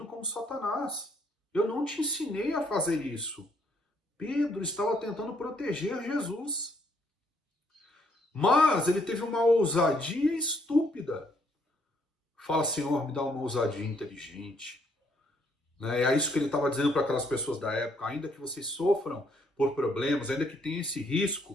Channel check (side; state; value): both; normal; correlation 0.70